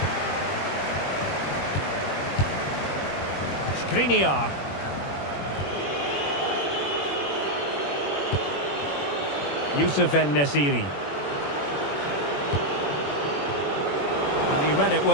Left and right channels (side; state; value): right; late; 21 ms